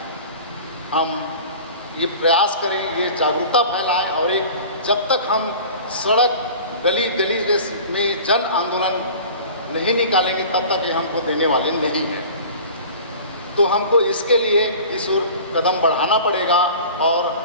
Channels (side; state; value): both; inverted; correlation -0.41